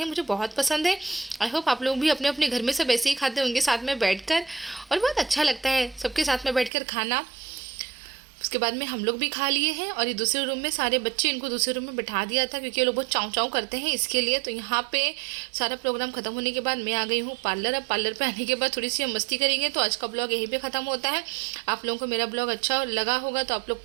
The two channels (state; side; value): drops out; left; at 6.7 s